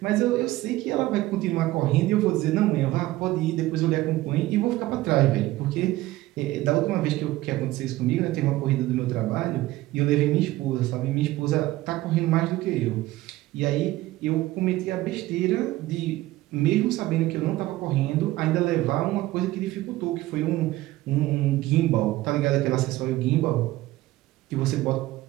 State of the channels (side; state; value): left; quieter; 17.1 dB